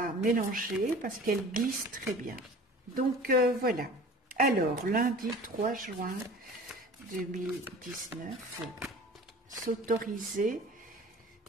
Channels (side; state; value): both; normal; correlation 0.43